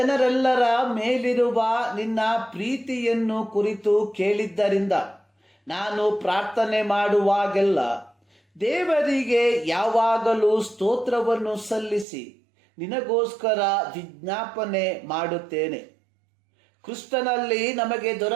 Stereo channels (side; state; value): left; drops out; at 12.1 s